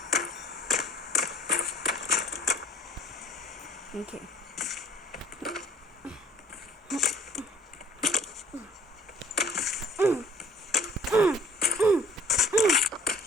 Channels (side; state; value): both; normal; correlation 0.54